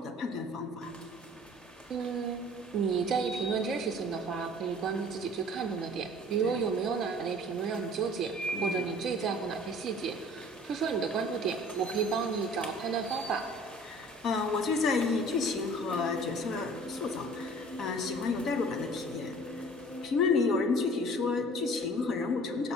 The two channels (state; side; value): normal; both; correlation 0.48